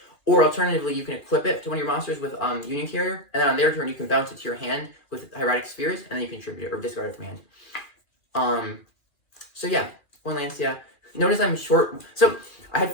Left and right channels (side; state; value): right; late; 2.4 ms